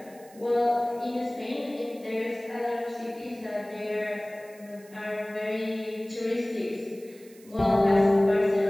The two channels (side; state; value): right; noise; hiss, 25 dB below the sound